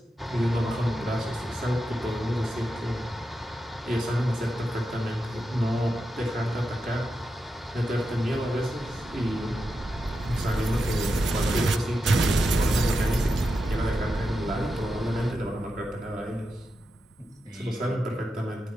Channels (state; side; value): normal; both; correlation 0.88